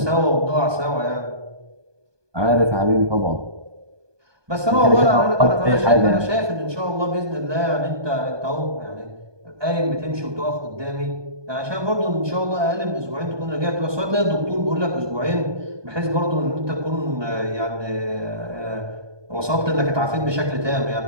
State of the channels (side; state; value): left; late; 1.2 ms